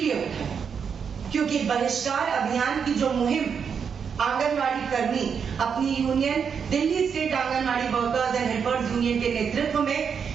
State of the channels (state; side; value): quieter; left; 6.7 dB